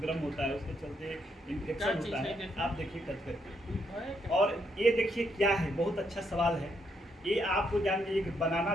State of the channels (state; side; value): normal; both; correlation 0.76